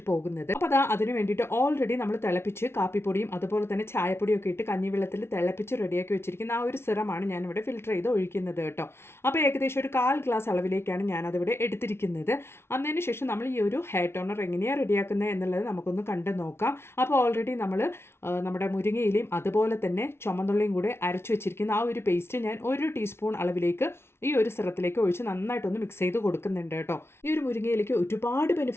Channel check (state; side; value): late; right; 0.12 ms